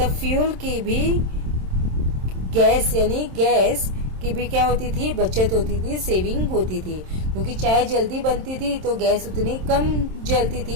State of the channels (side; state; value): left; late; 27 ms